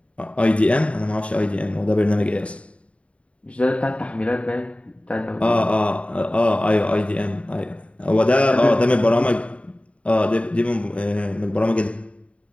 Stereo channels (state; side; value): late; right; 0.062 ms